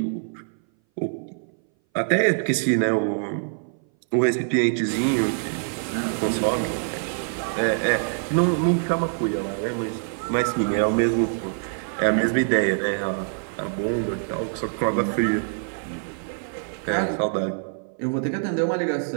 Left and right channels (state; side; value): silent; left; 59 dB below the other